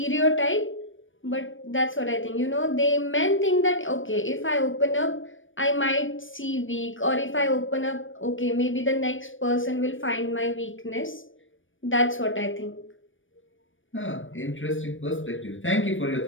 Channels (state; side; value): late; right; 0.57 ms